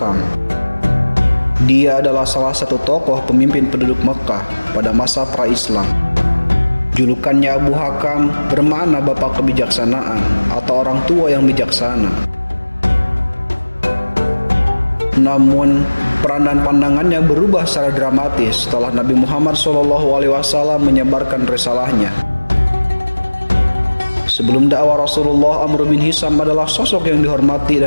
Dia adalah salah satu tokoh pemimpin penduduk Mekkah pada masa pra-Islam. Julukannya Abu Hakam bermakna bapak kebijaksanaan atau orang tua yang bijaksana. Namun, peran dan pandangannya berubah secara dramatis setelah Nabi Muhammad SAW menyebarkan risalahnya. Sebelum dakwah Rasulullah, Amr bin Hisam adalah sosok yang dihormati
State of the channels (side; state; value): both; inverted; correlation -1.00